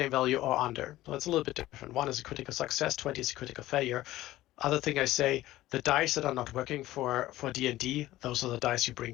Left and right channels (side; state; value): right; quieter; 15.9 dB